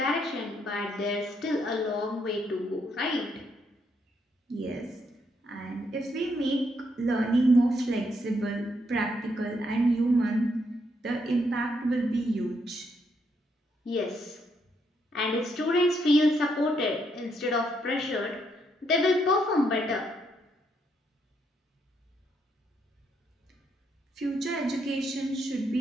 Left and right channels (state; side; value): normal; both; correlation 0.76